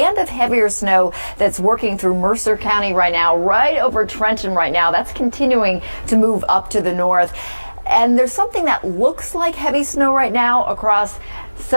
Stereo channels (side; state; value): both; inverted; correlation -1.00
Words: of heavier snow that's working through Mercer County right now, right over Trenton right now. That's continuing to move up to the north. And there's something that looks like heavy snow right now across